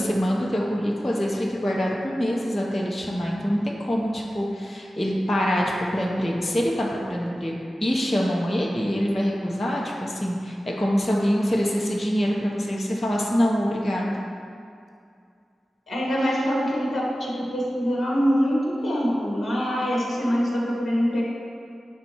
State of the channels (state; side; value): normal; both; correlation 0.95